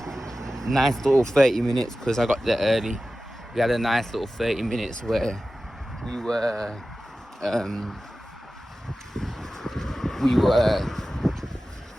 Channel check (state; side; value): normal; both; correlation 0.95